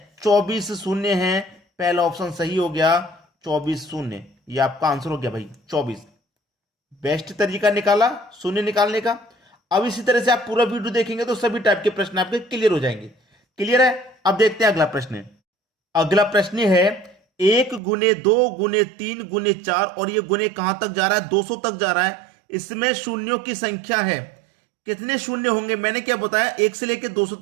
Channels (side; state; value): left; drops out; at 17.8 s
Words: 24 शून्य हैं। पहला ऑप्शन सही हो गया, 24 शून्य, ये आपका आंसर हो गया भाई 24। बेस्ट तरीका निकाला शून्य निकालने का। अब इसी तरह से आप पूरा वीडियो देखेंगे तो सभी टाइप के प्रश्न आपके क्लियर हो जाएंगे। क्लियर है? अब देखते हैं अगला प्रश्न। अगला प्रश्न है 1 गुने 2 गुने 3 गुने 4 और ये गुने कहां तक जा रहा है, 200 तक जा रहा है। इसमें शून्यों की संख्या है, कितने शून्य होंगे, मैंने क्या बताया, 1 से लेकर 200